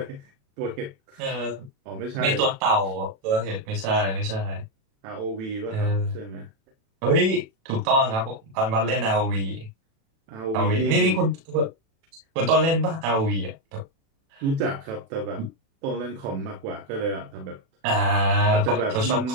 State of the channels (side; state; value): left; late; 36 ms